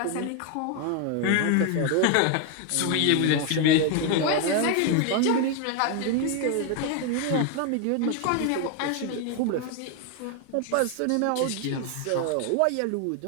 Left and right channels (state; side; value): different; both; correlation 0.01